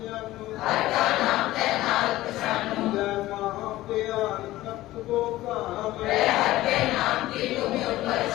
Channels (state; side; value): quieter; right; 16.4 dB